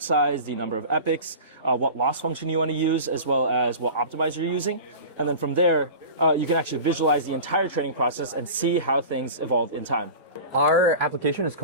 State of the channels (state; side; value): inverted; both; correlation -0.35